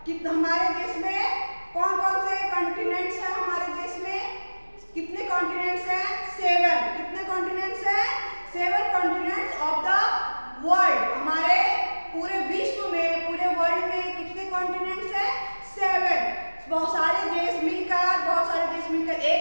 कि हमारे देश में कौन कौन से कॉन्टिनेंट्स हैं? हमारे देश में कितने कॉन्टिनेंट्स हैं? 7. कितने कॉन्टिनेंट्स हैं? 7 कॉन्टिनेंट्स ऑफ द वर्ल्ड. हमारे पूरे विश्व में, पूरे वर्ल्ड में कितने कॉन्टिनेंट्स हैं? 7. बहुत सारे देश मिलकर एक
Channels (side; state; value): both; inverted; correlation -1.00